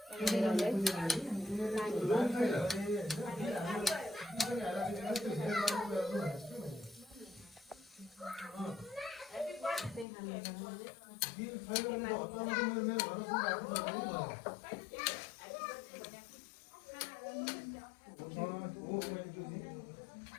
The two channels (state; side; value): drops out; right; at 10.1 s